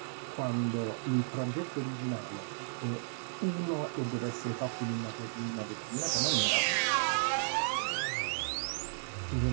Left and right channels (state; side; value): silent; left; 55 dB below the other